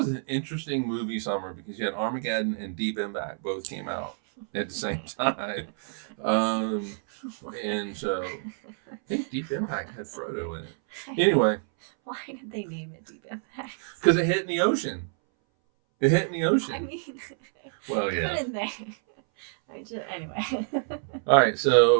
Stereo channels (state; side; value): silent; left; 60 dB below the other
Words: an interesting movie summer because you had Armageddon and Deep Impact both came out at the same time. And so I think Deep Impact had Frodo in it. Anyway. Why did they name it Deep Impact? Because it hit in the ocean. It hit in the ocean. I mean, well, yeah. Couldn't they? Anyway. All right,